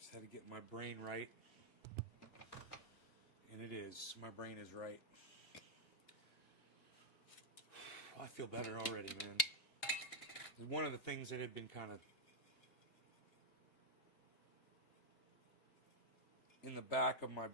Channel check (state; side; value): late; right; 2.8 ms